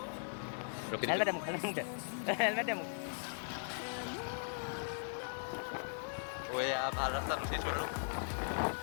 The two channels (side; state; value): right; silent; digital silence